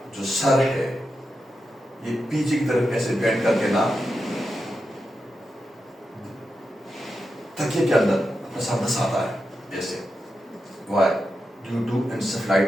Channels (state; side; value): normal; both; correlation 0.88